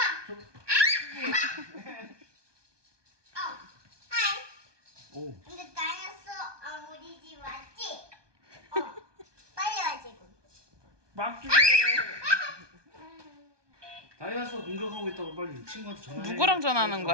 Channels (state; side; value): late; left; 1.2 ms